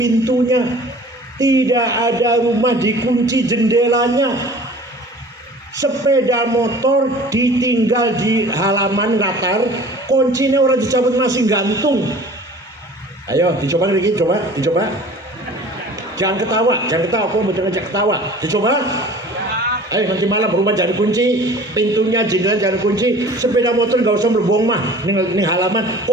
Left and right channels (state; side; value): normal; both; correlation 0.45